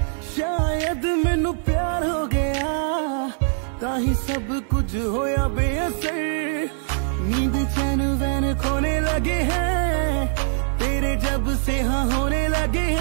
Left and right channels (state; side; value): silent; left; digital silence